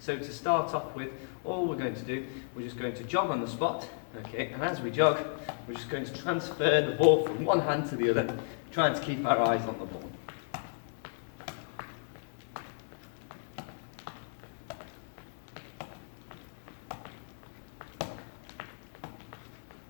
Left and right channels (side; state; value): right; silent; digital silence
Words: So to start off with, all we're going to do, we're just going to jog on the spot, okay? And as we jog, we're just going to transfer the ball from one hand to the other, trying to keep our eyes on the ball.